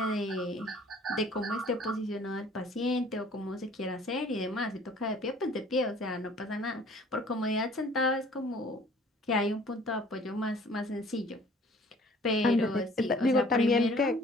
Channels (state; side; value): normal; both; correlation 0.53